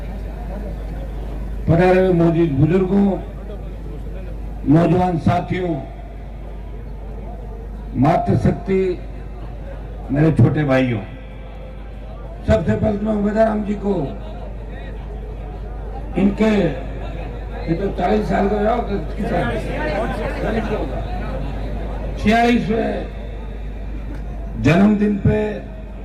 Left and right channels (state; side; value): identical; both; correlation 1.00